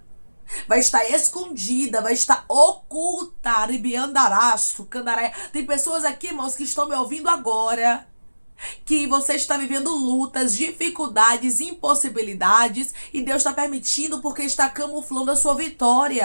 Vai estar escondida, vai estar oculta. Ribiandaraço, candaraia. Tem pessoas aqui, irmãos, que estão me ouvindo agora, que você está vivendo lutas, dificuldades, impossibilidades, e Deus está permitindo porque está camuflando a sua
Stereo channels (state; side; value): inverted; both; correlation -1.00